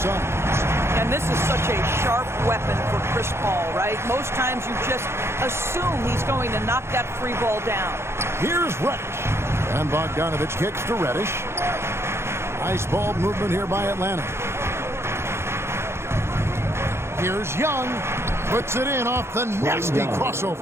And this is such a sharp weapon for Chris Paul, right? Most times you just assume he's going to knock that free ball down. Here's Reddish. And Bogdanovich kicks to Reddish. Nice ball movement here by Atlanta. Here's Young. Puts it in off the nasty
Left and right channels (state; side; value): late; left; 0.12 ms